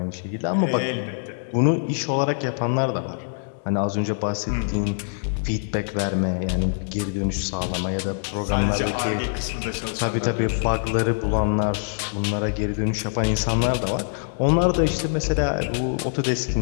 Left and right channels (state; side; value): silent; right; 63 dB below the other